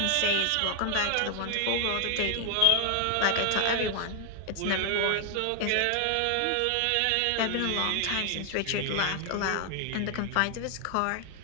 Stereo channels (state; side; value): different; both; correlation 0.00